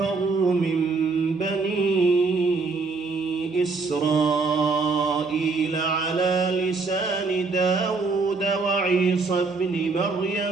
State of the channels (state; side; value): quieter; left; 4.1 dB